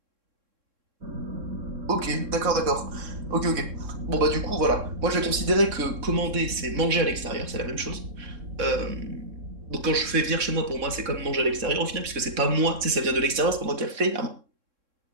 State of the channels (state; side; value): late; left; 3.6 ms